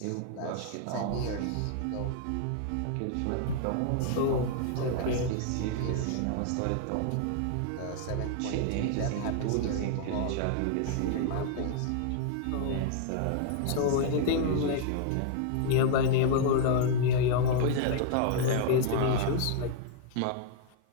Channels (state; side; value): different; both; correlation 0.00